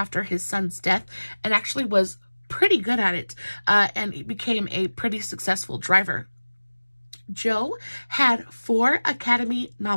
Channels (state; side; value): inverted; both; correlation -1.00